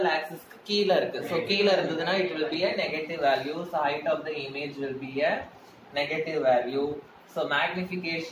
axis க்கு கீழ இருக்கு. So கீழ இருந்ததுன்னா it will be a negative value. So height of the image will be a negative value. So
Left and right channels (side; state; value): both; identical; correlation 1.00